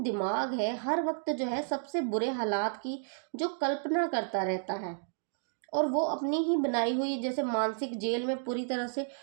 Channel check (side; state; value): left; silent; digital silence